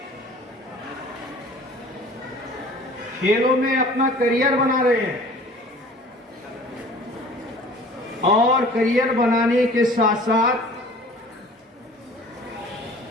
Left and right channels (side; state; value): both; normal; correlation 0.47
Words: खेलों में अपना करियर बना रहे हैं और करियर बनाने के साथ साथ